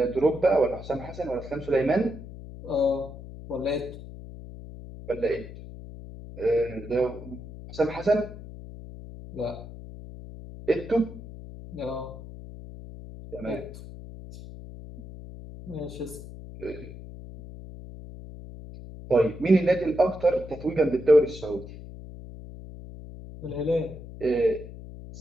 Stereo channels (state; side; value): noise; left; hum, 13 dB below the sound